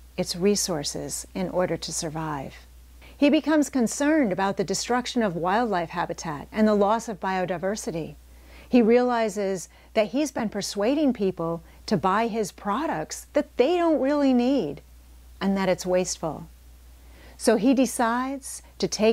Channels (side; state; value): both; identical; correlation 1.00